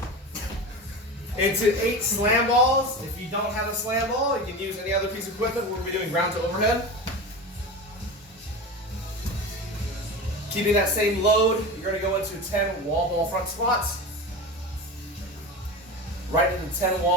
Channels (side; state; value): both; normal; correlation 0.27